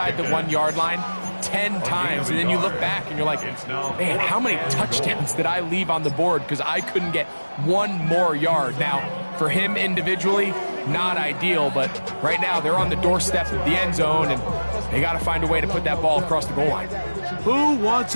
the 1-yard line 10 times, and then you look back and you're like, man, how many touchdowns did I leave on the board because I couldn't get one more yard? Now, for him individually, not ideal, but right now they're on the doorstep of the end zone, and they got to find a way to put that ball across the goal line. Who wants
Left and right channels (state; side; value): inverted; both; correlation -1.00